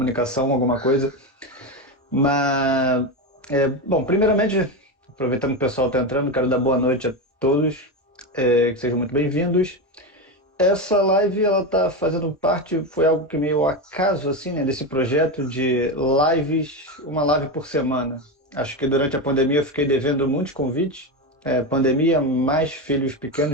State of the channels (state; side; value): normal; both; correlation 0.15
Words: alguma coisa. Mas, bom, primeiramente, aproveitando que o pessoal está entrando, quero dar boa noite a todos, que sejam muito bem-vindos. Essa live, ela tá fazendo parte, foi algo que meio acaso, assim, né, desse projeto de lives, uma live por semana. Acho que durante a pandemia eu fiquei devendo muitos convites. Pandemia, mais filhos